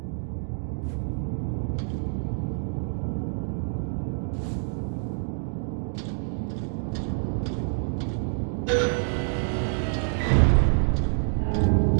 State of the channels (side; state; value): left; silent; 60 dB below the other